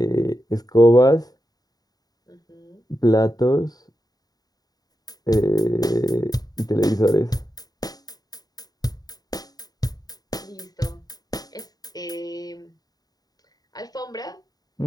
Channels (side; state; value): right; late; 0.18 ms